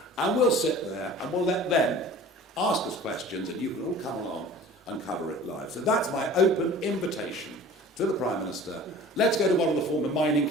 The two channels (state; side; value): normal; both; correlation 0.43